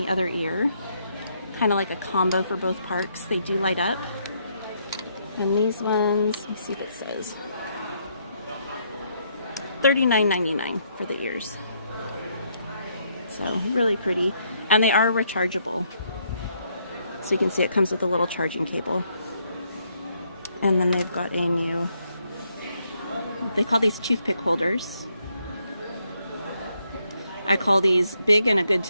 other ear. Kind of like a combo for both parks. They do light up. And these ones, let me see if it says. $39.99 for the ears. So really pretty. And they are rechargeable. So you can see it comes with a little charging cable. And then they've got a new, they call these toothpick holders. I call these big and a good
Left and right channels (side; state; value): both; inverted; correlation -0.74